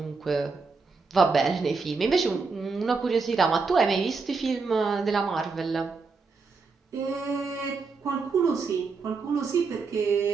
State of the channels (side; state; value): left; quieter; 4.5 dB